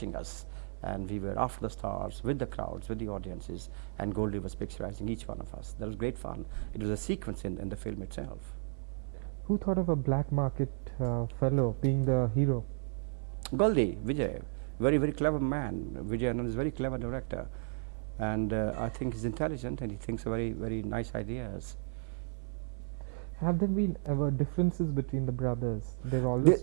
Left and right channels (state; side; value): silent; left; 55 dB below the other